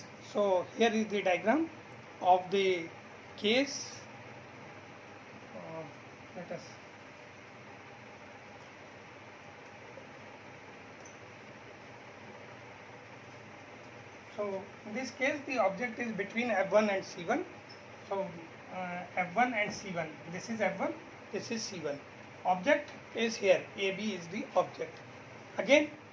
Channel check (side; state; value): both; identical; correlation 1.00